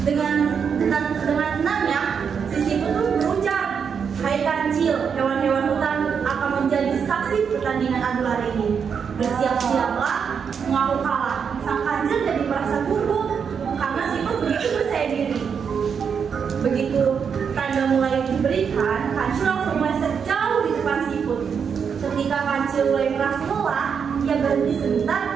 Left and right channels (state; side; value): quieter; left; 6.7 dB